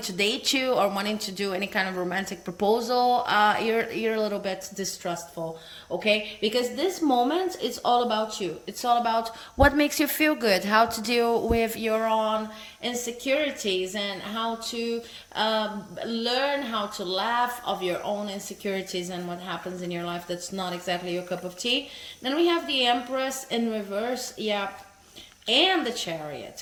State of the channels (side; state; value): both; identical; correlation 1.00